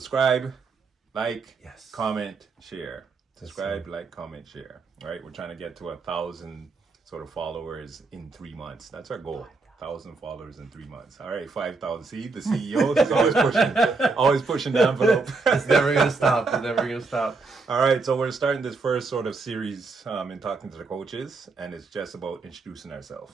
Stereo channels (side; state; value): left; quieter; 4.0 dB